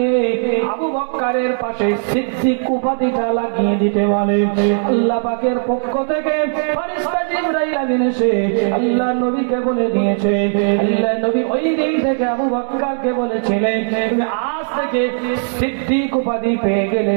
আবু বকরের পাশে সিদ্দিক উপাধিটা লাগিয়ে দিতে বলে। আল্লাহ পাকের পক্ষ থেকে ফেরেশতা জিবরাইল আমিন এসে আল্লাহ নবীকে বলে দিয়েছে। আল্লাহ নবী ওই দিন থেকে আবু বকরকে বলেছিলেন, তুমি আজ থেকে সিদ্দিক উপাধি পেয়ে গেলে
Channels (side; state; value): left; silent; digital silence